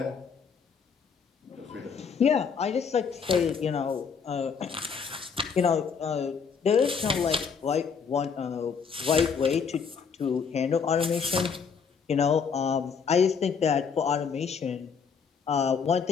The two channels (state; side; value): quieter; right; 6.2 dB